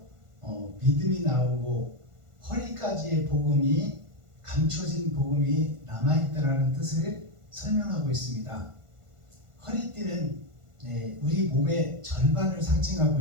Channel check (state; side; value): late; left; 1.5 ms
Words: 믿음이 나오고 허리까지의 복음이 감춰진 복음이 남아있다라는 뜻을 설명하고 있습니다. 허리띠는 우리 몸의 절반을